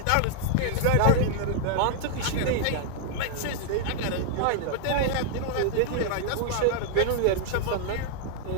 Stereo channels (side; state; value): both; different; correlation 0.00